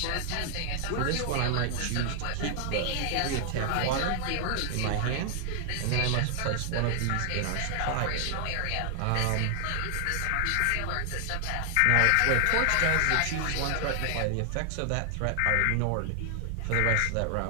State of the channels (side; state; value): both; different; correlation 0.00